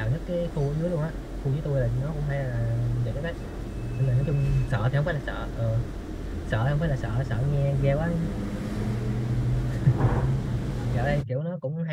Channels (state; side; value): identical; both; correlation 1.00